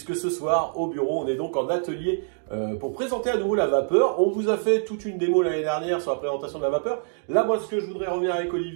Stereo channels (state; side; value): silent; left; digital silence